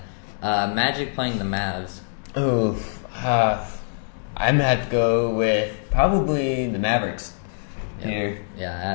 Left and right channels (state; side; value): silent; right; digital silence